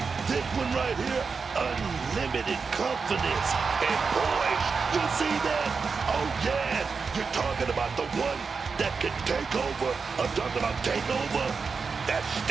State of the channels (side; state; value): left; quieter; 5.1 dB